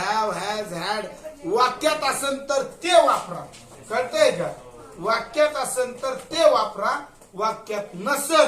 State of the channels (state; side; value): identical; both; correlation 1.00